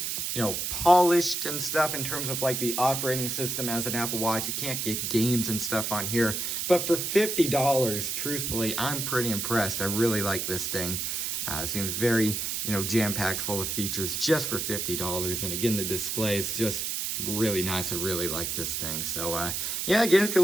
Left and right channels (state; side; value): noise; right; hiss, 2 dB below the sound